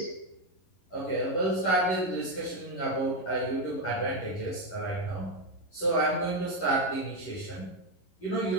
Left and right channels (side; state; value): right; late; 11 ms